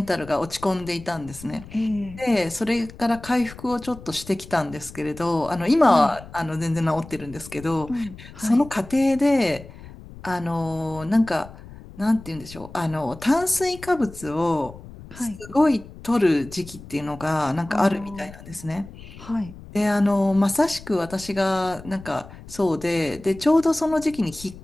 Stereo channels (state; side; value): noise; left; rumble, 17 dB below the sound